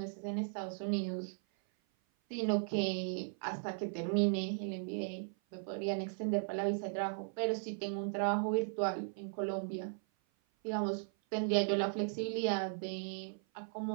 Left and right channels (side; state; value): left; silent; 53 dB below the other